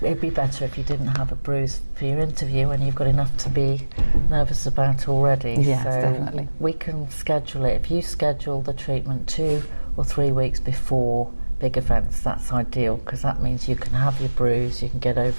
it'd be better if you didn't have a bruise for your interview and you've got enough to be nervous about already. Yes, so definitely. We can schedule it. If you schedule the treatment 2 or 3 weeks before big events, that's ideal, because that means you can have your bruise, you can get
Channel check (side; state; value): both; inverted; correlation -1.00